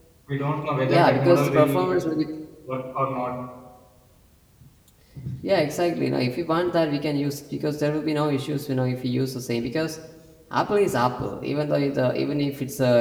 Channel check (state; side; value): identical; both; correlation 1.00